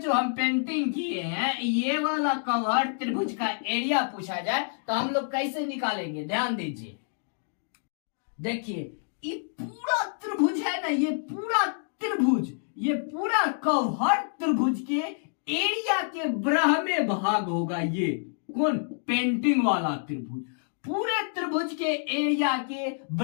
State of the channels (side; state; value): right; silent; digital silence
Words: जो हम पेंटिंग किए हैं ये वाला कवर्ड त्रिभुज का एरिया पूछा जाए तो हम लोग कैसे निकालेंगे, ध्यान दीजिए। देखिए ये पूरा त्रिभुज है ना, ये पूरा त्रिभुज, ये पूरा कर्व हर त्रिभुज के एरिया के ब्रह्मे भाग होगा। ये कौन? पेंटिंग वाला त्रिभुज पूरे त्रिभुज के एरिया के